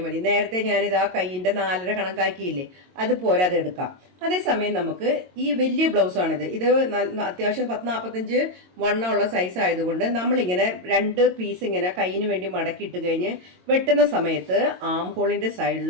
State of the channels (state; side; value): late; left; 22 ms